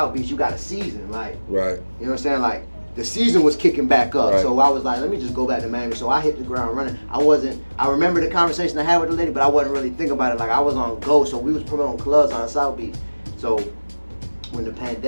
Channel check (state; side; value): inverted; both; correlation -1.00